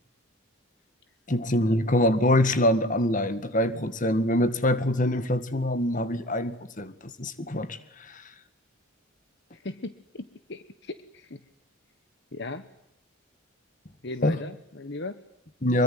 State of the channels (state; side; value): normal; both; correlation 0.42